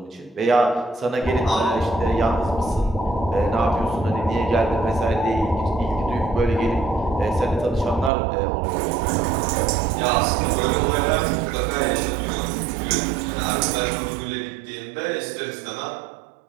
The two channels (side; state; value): left; drops out; at 8.1 s